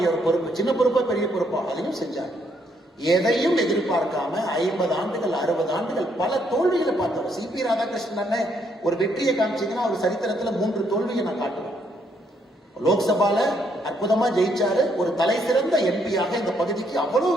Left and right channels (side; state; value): both; normal; correlation 0.72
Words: ஒரு பொறுப்பு, சின்ன பொறுப்போ பெரிய பொறுப்போ, அதையும் செஞ்சாங்க. எதையும் எதிர்பார்க்காம 50 ஆண்டுகள் 60 ஆண்டுகள் பல தோல்விகளை பார்த்தோம். CP ராதாகிருஷ்ணன் ஒரு வெற்றியை காமிச்சீங்கன்னா அவர் சரித்திரத்துல 3 தோல்வியை நான் காட்டுவேன். லோக்சபால அற்புதமா ஜெயிச்சாரு, ஒரு தலை சிறந்த MP-யாக இந்த பகுதிக்கு அவ்வளவு